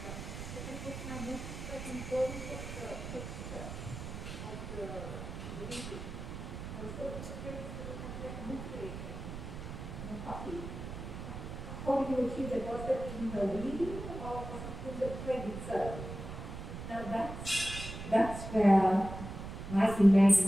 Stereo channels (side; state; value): right; noise; rumble, 8 dB below the sound